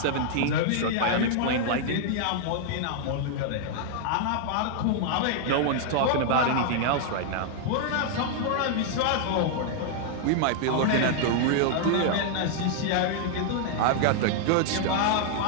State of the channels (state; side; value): different; both; correlation 0.00